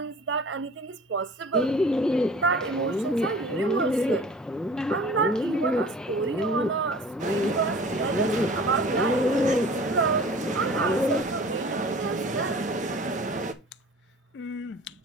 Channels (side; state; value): both; normal; correlation 0.45